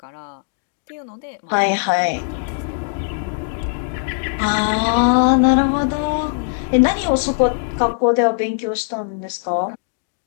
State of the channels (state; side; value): silent; right; digital silence